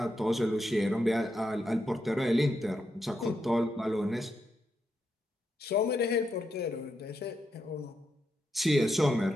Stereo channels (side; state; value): both; normal; correlation 0.83